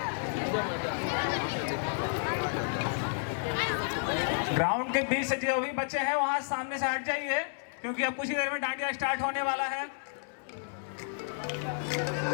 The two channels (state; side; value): silent; right; digital silence